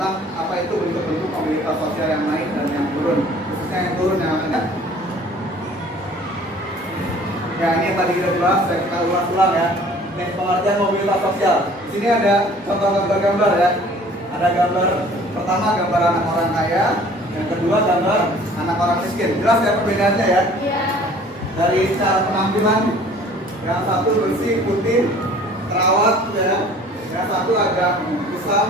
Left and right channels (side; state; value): both; normal; correlation 0.51